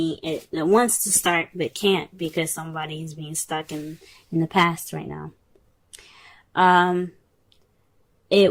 wants to start but can't because somebody is being stuck in the past right now.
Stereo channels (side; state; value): both; identical; correlation 1.00